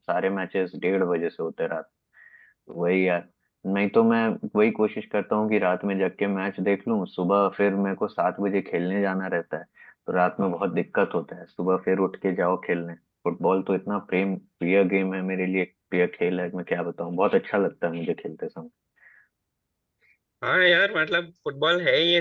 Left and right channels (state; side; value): identical; both; correlation 1.00